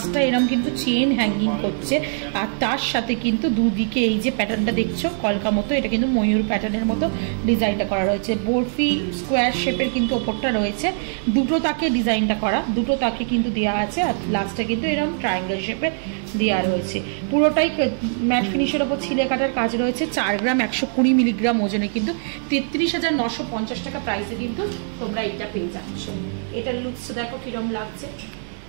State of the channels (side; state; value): left; silent; 59 dB below the other